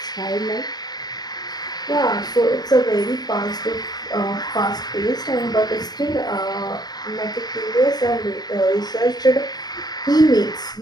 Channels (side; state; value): right; late; 0.20 ms